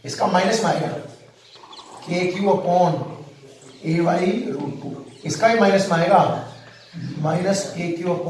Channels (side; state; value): both; identical; correlation 1.00